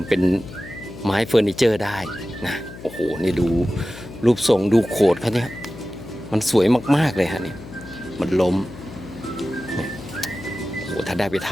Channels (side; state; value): left; noise; hum, 15 dB below the sound